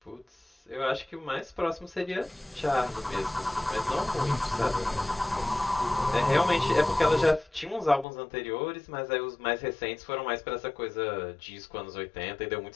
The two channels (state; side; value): drops out; right; at 8.1 s